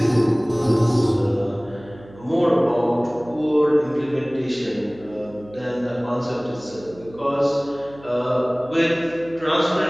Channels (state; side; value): noise; right; hum, 22 dB below the sound